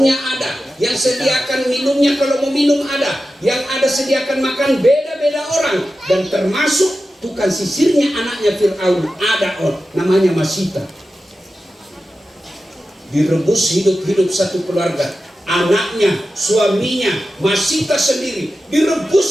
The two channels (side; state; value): both; normal; correlation 0.93